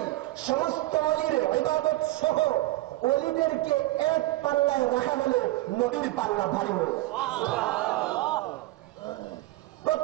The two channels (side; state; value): left; quieter; 18.1 dB